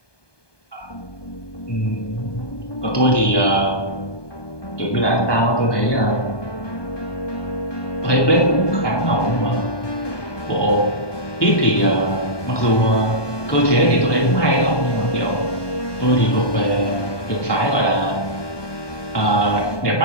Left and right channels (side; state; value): right; late; 1.2 ms